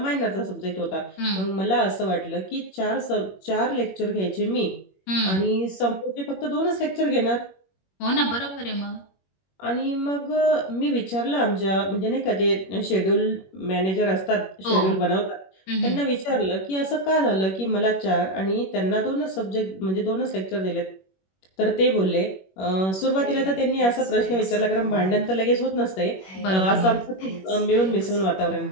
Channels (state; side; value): late; right; 21 ms